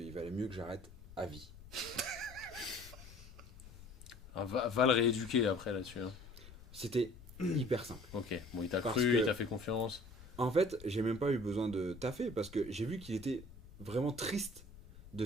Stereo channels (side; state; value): left; noise; rumble, 18 dB below the sound